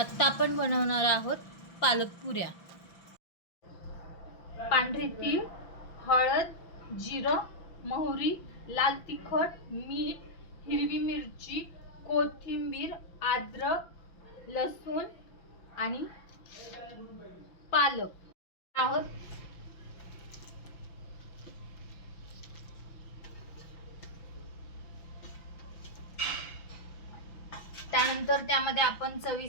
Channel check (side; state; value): right; late; 5.9 ms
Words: आपण बनवणार आहोत पालक पुऱ्या। पांढरी तीळ, हळद, जिरं, मोहरी, लाल तिखट, मीठ, हिरवी मिरची, कोथिंबीर, अद्रक, लसूण आणि पालक आहोत। त्यानंतर त्यामध्ये आपण